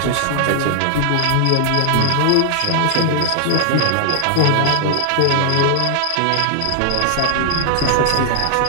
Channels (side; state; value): both; different; correlation 0.00